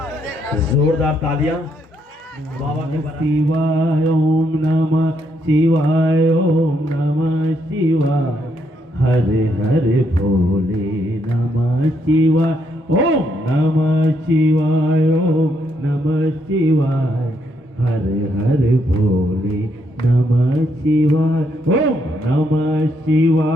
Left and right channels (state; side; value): normal; both; correlation 0.75